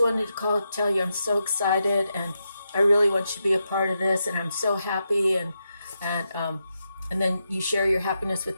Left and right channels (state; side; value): inverted; both; correlation -0.86